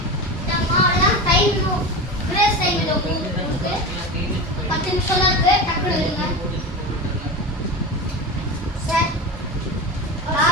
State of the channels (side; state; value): both; normal; correlation 0.25